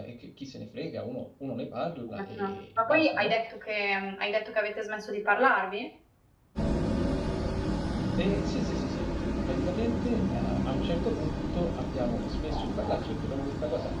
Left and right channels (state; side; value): identical; both; correlation 1.00